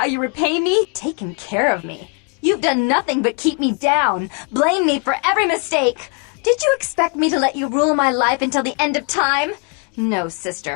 you repay me? Taken care of me? You've done nothing but keep me down, blame me for every mistake. Did you expect me to let you rule my life until the end of time? No,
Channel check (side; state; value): right; quieter; 36.0 dB